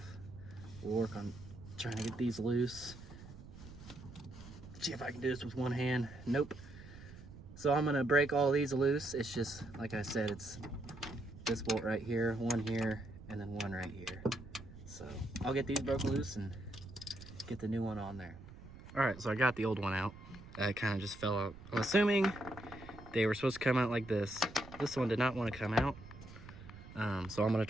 We'll work on trying to get these loose. See if I can do this with one hand. Nope. So I'm gonna break all these loose. It's just, like I said, it's this bolt right here, one here, and then one right here. So I'll get these broken loose and get the new one on there. All right, so I got the old one out. It kind of just fell out. I'm assuming they were supposed to come out like this. This one did not want to come out. So I'm gonna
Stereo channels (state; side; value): noise; right; rumble, 16 dB below the sound